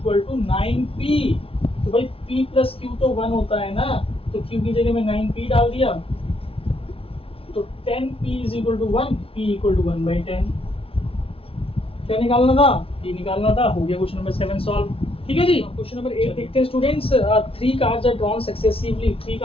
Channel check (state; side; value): late; right; 0.27 ms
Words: to 9p। तो भाई p प्लस q तो 1 होता है ना, तो q की जगह में 9p डाल दिया, तो 10p is equal to 1, p equal to 1/10। क्या निकालना था, p निकालना था। हो गया क्वेश्चन नंबर 7 सॉल्व। ठीक है जी, क्वेश्चन नंबर 8 देखते हैं students. 3 cards are drawn successively, 3